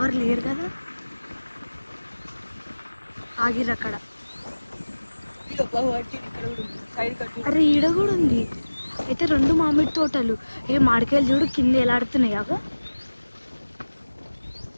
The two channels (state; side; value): inverted; both; correlation -1.00